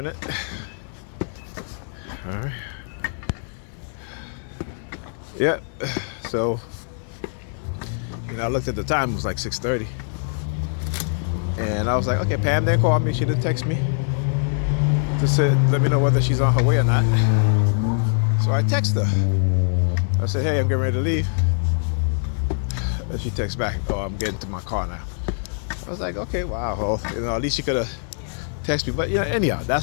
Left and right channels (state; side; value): silent; right; digital silence